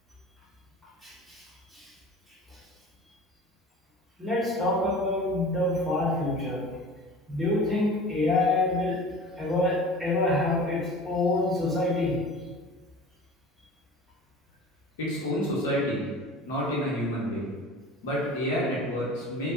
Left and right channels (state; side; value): normal; both; correlation 0.39